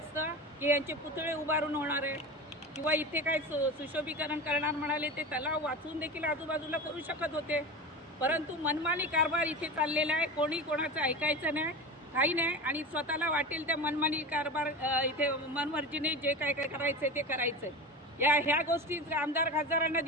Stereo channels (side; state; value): both; normal; correlation 0.27